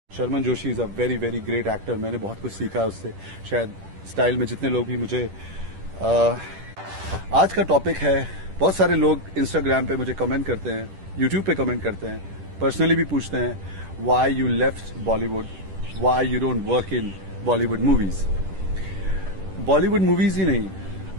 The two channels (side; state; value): left; late; 10 ms